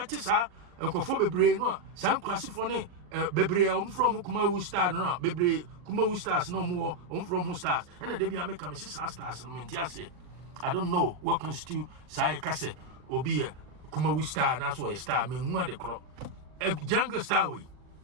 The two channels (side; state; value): left; late; 40 ms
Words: sa enkofo bebre no a san kwasifo ne bebre from Kumawu star no bebre Kumawu stars no more from who stars and they be make am stars no menti ase I don't know what constitute say kase obi a Kumawu star na so a star me hu ade kro a jungle star we